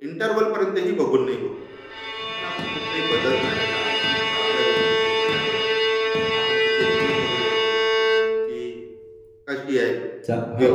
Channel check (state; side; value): identical; both; correlation 1.00